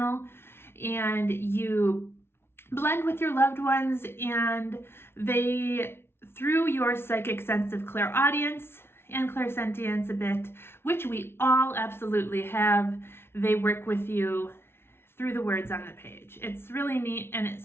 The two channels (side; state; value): right; late; 0.12 ms